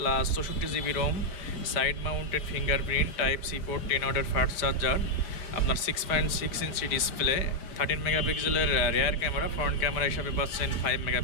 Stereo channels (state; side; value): late; right; 4.9 ms